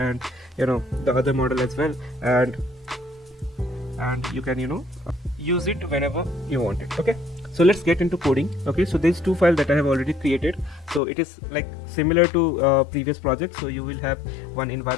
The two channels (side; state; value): right; drops out; at 11.0 s